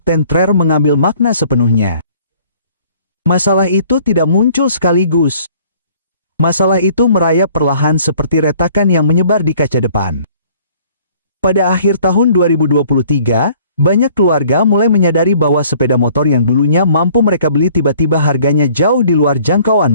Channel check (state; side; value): inverted; both; correlation -0.56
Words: Trere mengambil makna sepenuhnya. Masalah itu tidak muncul sekaligus. Masalah itu merayap perlahan seperti retakan yang menyebar di kaca depan. Pada akhir tahun 2023, banyak keluarga mulai menyadari bahwa sepeda motor yang dulunya mampu mereka beli tiba-tiba harganya jauh di luar jangkauan